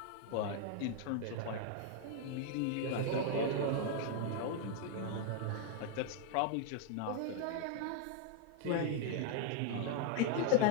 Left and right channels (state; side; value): different; both; correlation 0.00